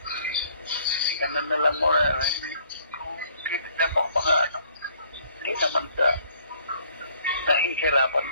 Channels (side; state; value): both; inverted; correlation -0.60